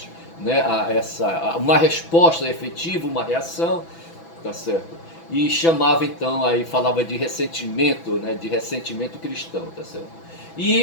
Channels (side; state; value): right; late; 6.0 ms